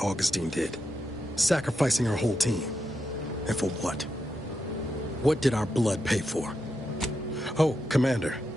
Augustine did. Sacrificing her whole team. And for what? What did our blood pay for? Oh, Commander.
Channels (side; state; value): both; normal; correlation 0.85